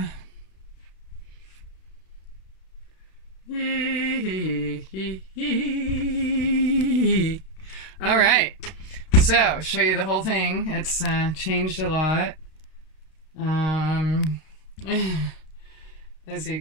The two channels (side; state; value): right; late; 32 ms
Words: Alright, so show you the whole thing. It's changed a lot. As you